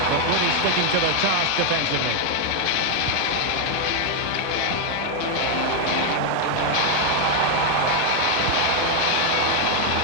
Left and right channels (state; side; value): different; both; correlation 0.01